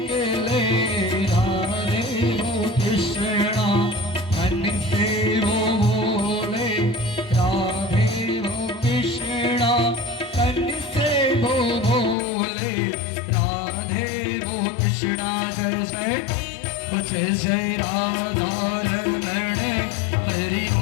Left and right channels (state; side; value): drops out; right; at 12.2 s